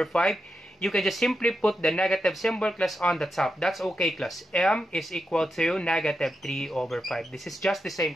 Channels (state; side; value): normal; both; correlation 0.87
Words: 5. You can just simply put the negative symbol class on the top. That's okay class. M is equal to negative 3 over 5. This is just the same